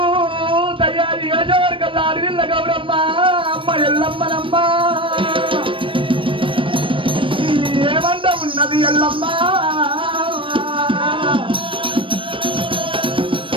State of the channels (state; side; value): late; left; 0.25 ms